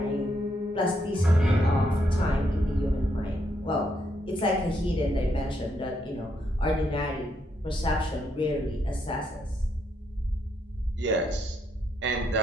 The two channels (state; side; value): normal; both; correlation 0.76